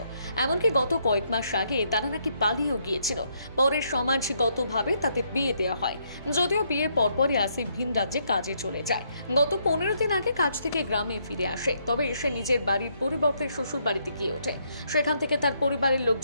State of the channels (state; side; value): inverted; both; correlation -0.74